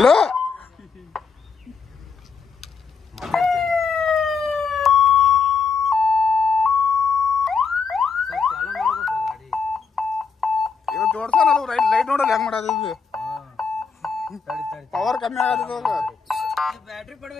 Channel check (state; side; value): quieter; right; 5.4 dB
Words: ಇವತ್ತು ಜೋಡ್ಸ ನಾವು ಲೈಟ್ ನೋಡಲ್ಲ ಹೆಂಗ್ ಮಾಡೋದು. ಪವರ್ ಕಮ್ಮಿ ಆಗದ.